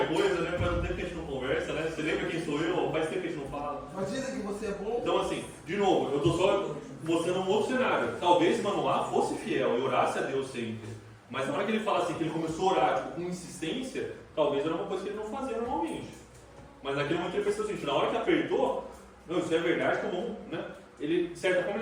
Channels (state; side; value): identical; both; correlation 1.00